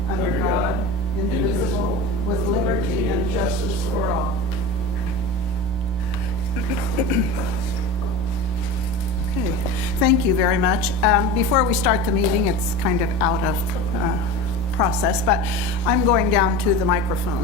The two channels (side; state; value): both; normal; correlation 0.30